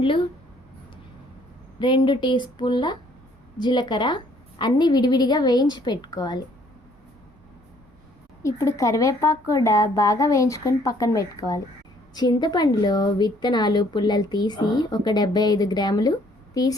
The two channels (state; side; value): normal; both; correlation 0.62